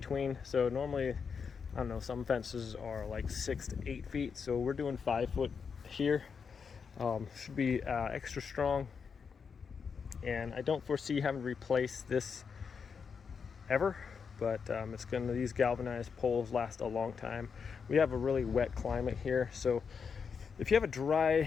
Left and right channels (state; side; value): quieter; right; 6.0 dB